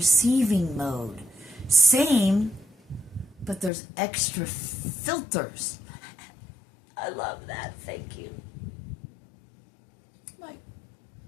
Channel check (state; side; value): drops out; right; at 3.7 s